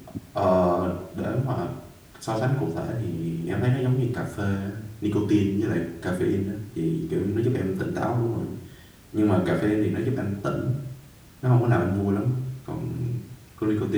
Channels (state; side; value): identical; both; correlation 1.00